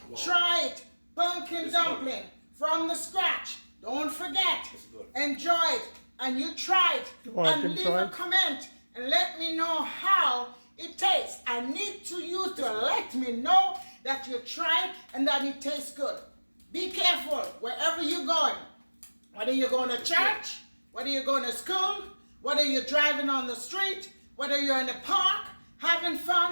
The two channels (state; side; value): inverted; both; correlation -1.00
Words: Try it. Pumpkin dumpling from the scratch. Don't forget. Enjoy it. And you try it. And leave a comment and let me know how it tastes. I need you to let me know that you tried and that it tastes good. Be careful wherever you're going. Whether you're going to church, whether you're going to school, whether you're driving on the street, whether you're in the park, having